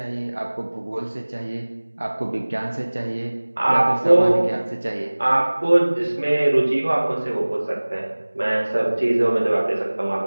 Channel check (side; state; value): both; inverted; correlation -1.00